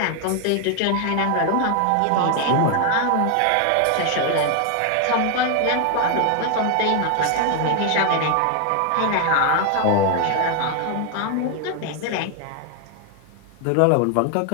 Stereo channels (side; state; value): both; different; correlation 0.00